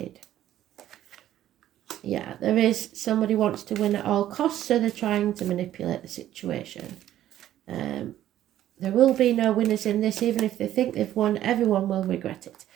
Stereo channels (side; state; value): left; quieter; 12.5 dB